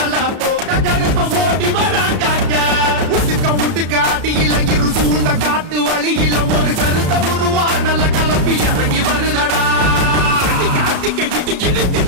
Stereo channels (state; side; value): late; left; 33 ms